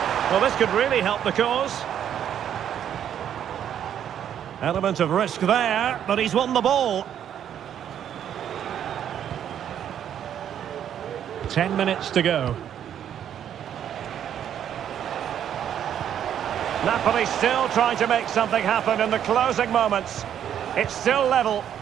Well, this could really help the cause. Element of risk there, but he's won the ball. 10 minutes to go. Napoli still trying to make something happen in the closing moments. It's still level.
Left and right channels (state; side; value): quieter; left; 9.7 dB